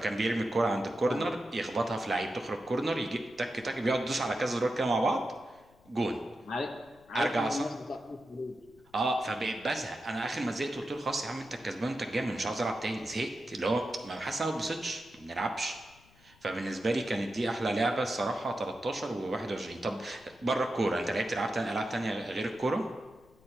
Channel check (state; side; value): noise; left; rumble, 28 dB below the sound